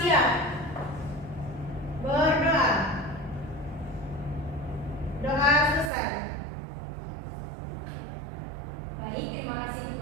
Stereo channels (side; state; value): left; drops out; at 5.9 s